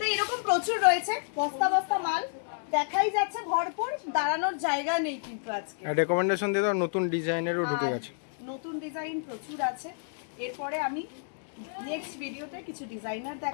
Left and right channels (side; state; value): right; silent; digital silence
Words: এরকম প্রচুর রয়েছে, বস্তা বস্তা মাল দেখাই যাচ্ছে ভরপুর, দাঁড়ানোর জায়গা নেই কিন্তু আজকে। রেকমেন্ডেশন দিয়ে দাও, নতুন ডিজাইনেরও ঢুকে আর গেছে। নতুন ডিজাইন প্রচুর আছে। এরপরে আমি নেক্সট ভিডিওতে কিছু ডিজাইনার